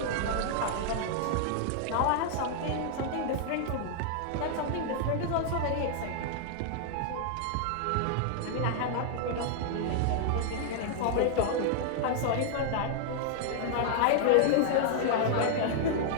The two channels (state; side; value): different; both; correlation -0.01